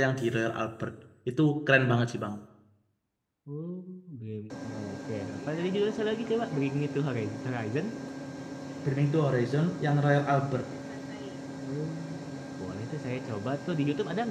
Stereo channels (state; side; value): identical; both; correlation 1.00